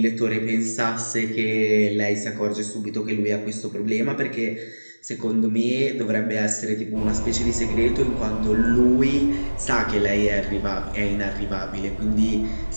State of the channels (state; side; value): inverted; both; correlation -1.00